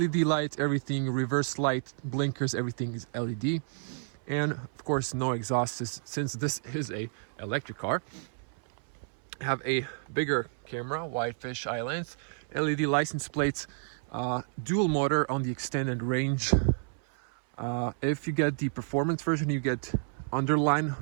light, everything reverse light, blinkers, everything is LED. And of course no exhaust, since this is a electric car. Have a bigger camera, wide fish-eye lens, LED license plates, dual motor on the extended range. If you get the performance version, you get underline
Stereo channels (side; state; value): left; silent; 58 dB below the other